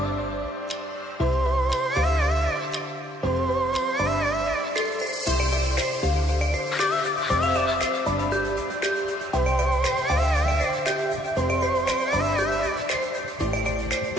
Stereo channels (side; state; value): both; normal; correlation 0.68